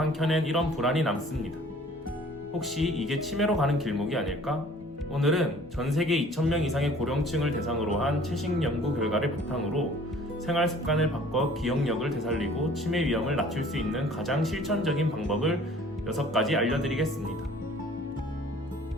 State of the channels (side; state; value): both; normal; correlation 0.52